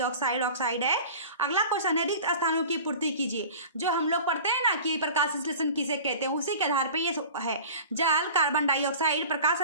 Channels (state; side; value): inverted; both; correlation -0.39